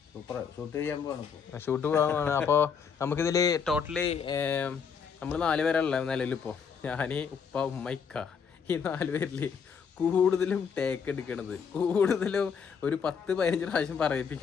ഷൂട്ട് പോകാൻ. അപ്പോൾ നമുക്കിതിൽ ടോട്ടലി നമ്മൾ 4 പേരല്ല നിലവിലിപ്പോൾ. ഞാൻ, ഉപ്പ, ഉമ്മ, ഇക്ക, ഈ 4 പേരിൽ കൂടുതലും ടേക്ക് എടുക്കണത്, കൂടുതലും ഒരു 10-15 പ്രാവശ്യം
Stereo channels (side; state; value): right; quieter; 6.5 dB